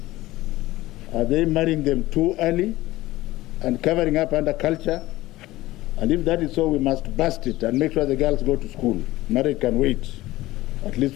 Are they marrying them too early and covering up under culture? And if that is so, we must bust it and make sure the girls go to school. Marriage can wait at least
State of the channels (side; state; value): right; quieter; 17.5 dB